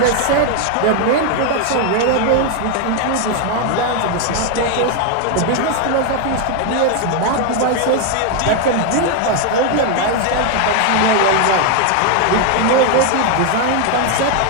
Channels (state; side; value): different; both; correlation 0.01